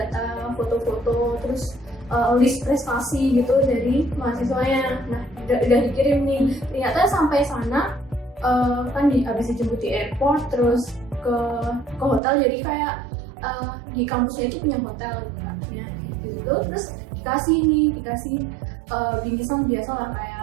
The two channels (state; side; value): drops out; left; at 12.2 s